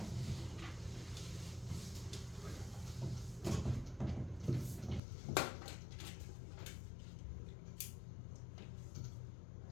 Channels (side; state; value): right; drops out; at 5.0 s